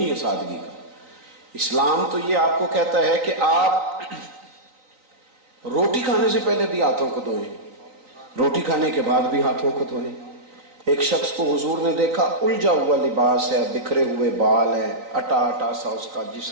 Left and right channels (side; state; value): left; late; 3.9 ms